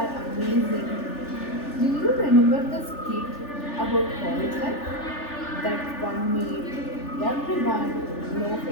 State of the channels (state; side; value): late; right; 3.4 ms